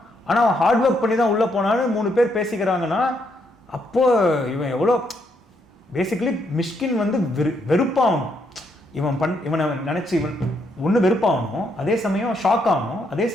ஆனால் அவன் ஹார்ட் ஒர்க் பண்ணி தான் உள்ளே போனான்னு 3 பேர் பேசிக்கிறாங்கன்னா அப்போது இவன் எவ்வளோ பேசிக்கலி மிஷ்கின் வந்து வெறுப்பாகணும். இவனை நினச்சி இவன் ஒன்று வெறுப்பாகணும், அதே சமயம் ஷாக் ஆகணும், அதே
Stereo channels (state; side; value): normal; both; correlation 0.75